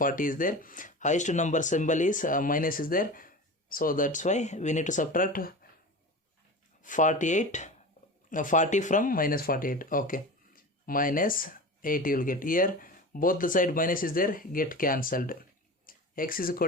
is there, highest number symbol is minus is there, so that's why we need to subtract 40 from minus 48. Okay, minus 8 you will get. Here both the side minus is there, get cancelled. X is equal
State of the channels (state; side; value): normal; both; correlation 0.31